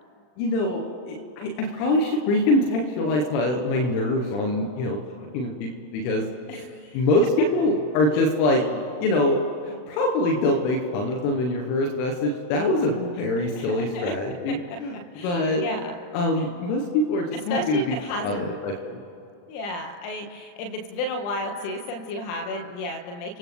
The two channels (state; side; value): late; right; 40 ms